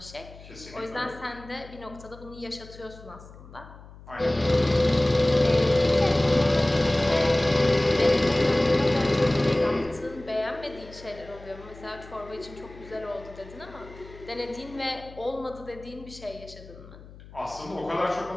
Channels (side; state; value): left; noise; hum, 19 dB below the sound